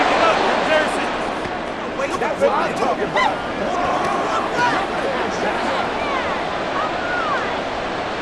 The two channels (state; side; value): identical; both; correlation 1.00